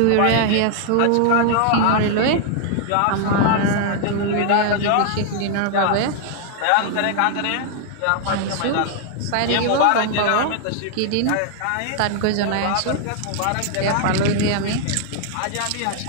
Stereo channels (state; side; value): different; both; correlation 0.00